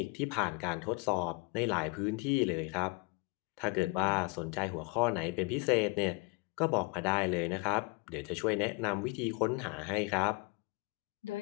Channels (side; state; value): right; quieter; 28.6 dB